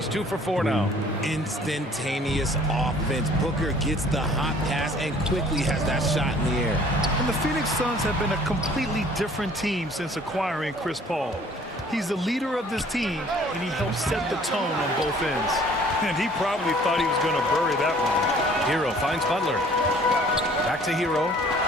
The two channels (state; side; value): normal; both; correlation 0.54